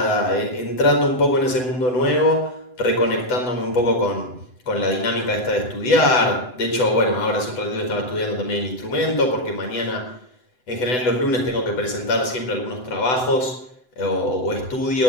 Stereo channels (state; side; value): late; right; 7.9 ms